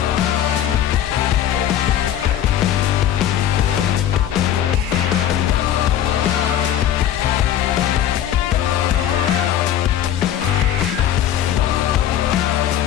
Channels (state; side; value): quieter; right; 10.7 dB